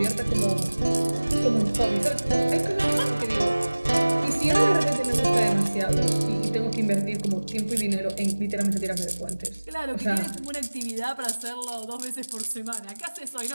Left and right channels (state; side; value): inverted; both; correlation -1.00